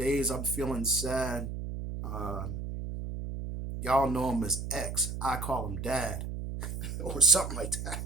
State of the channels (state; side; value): noise; right; hum, 5 dB below the sound